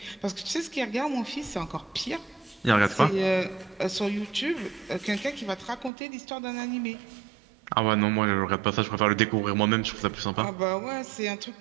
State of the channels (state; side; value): drops out; left; at 5.9 s